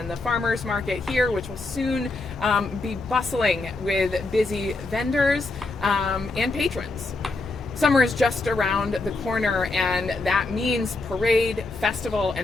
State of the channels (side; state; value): right; quieter; 3.2 dB